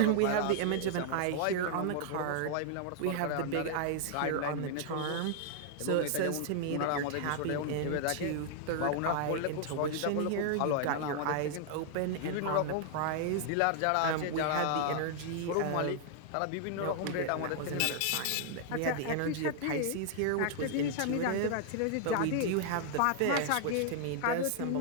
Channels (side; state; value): both; different; correlation -0.01